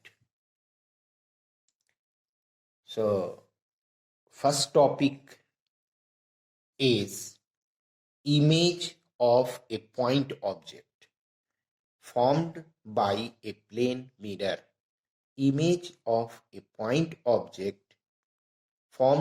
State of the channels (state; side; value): identical; both; correlation 1.00